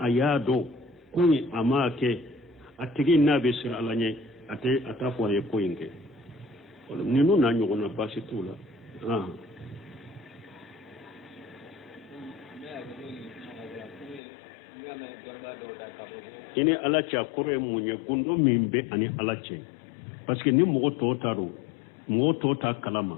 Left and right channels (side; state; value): right; drops out; at 14.2 s